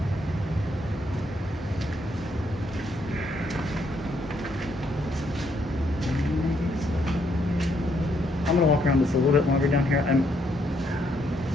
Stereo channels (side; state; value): both; normal; correlation 0.73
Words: I'm gonna walk around this a little bit longer down here.